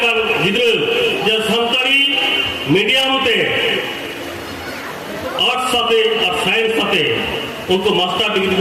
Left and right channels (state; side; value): identical; both; correlation 1.00